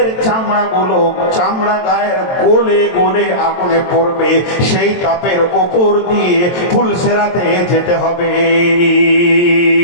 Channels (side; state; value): right; late; 23 ms